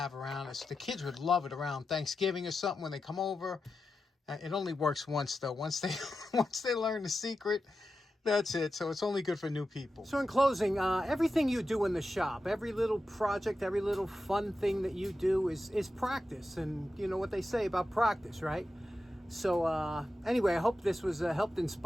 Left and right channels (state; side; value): normal; both; correlation 0.90